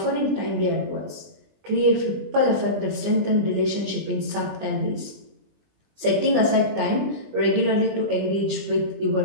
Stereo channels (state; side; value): late; left; 20 ms